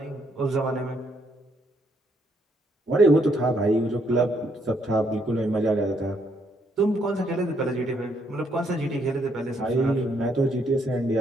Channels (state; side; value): normal; both; correlation 0.72